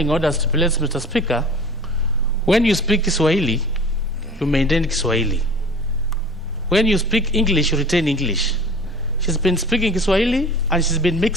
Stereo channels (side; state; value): both; normal; correlation 0.42